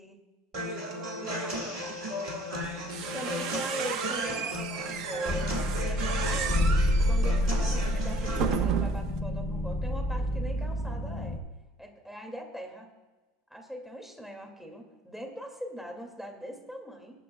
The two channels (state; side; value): normal; both; correlation 0.57